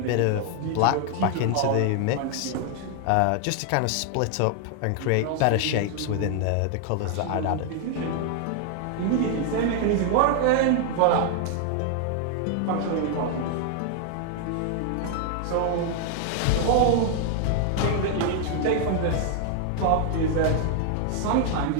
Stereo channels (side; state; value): both; different; correlation 0.00